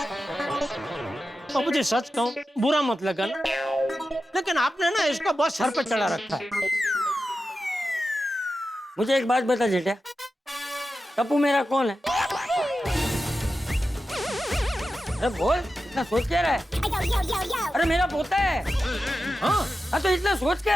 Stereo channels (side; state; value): both; normal; correlation 0.91